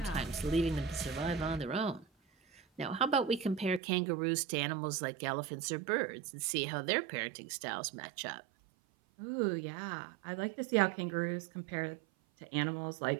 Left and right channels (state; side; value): drops out; left; at 3.8 s